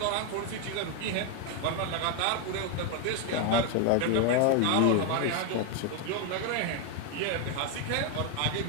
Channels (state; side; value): different; both; correlation 0.01